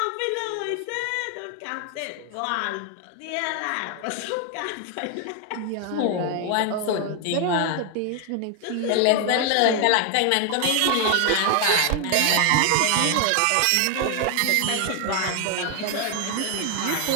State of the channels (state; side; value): different; both; correlation 0.00